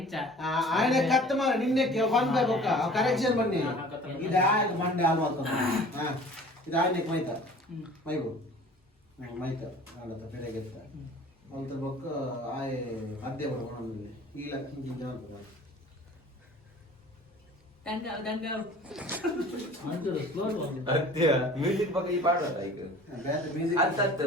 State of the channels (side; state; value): both; normal; correlation 0.46